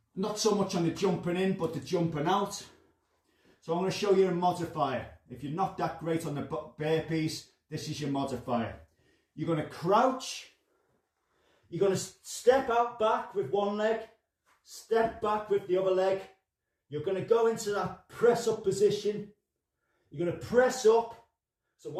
Not so much on the jumping in, but the jumping out. So I'm going to show you a modifier. If you're not that great on the burpees, this is your modifier. You're going to crouch. You're going to step out back with one leg. Step back with the other leg. You're going to go into that press up position. You're going to press up. So I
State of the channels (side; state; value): both; identical; correlation 1.00